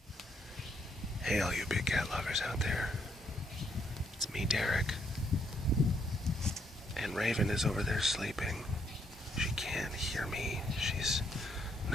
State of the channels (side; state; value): both; normal; correlation 0.73